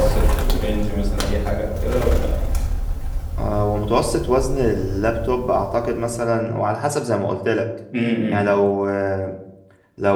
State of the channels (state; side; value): identical; both; correlation 1.00